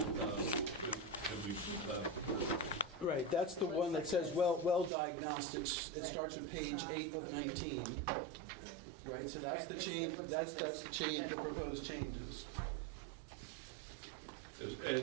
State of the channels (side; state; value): left; drops out; at 4.9 s